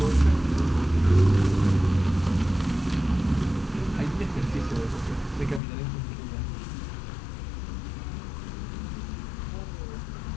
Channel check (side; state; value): right; drops out; at 5.6 s